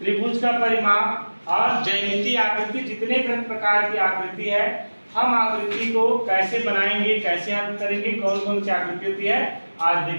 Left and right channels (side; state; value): both; inverted; correlation -1.00